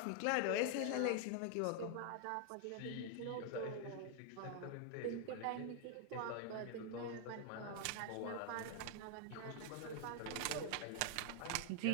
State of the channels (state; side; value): different; both; correlation 0.00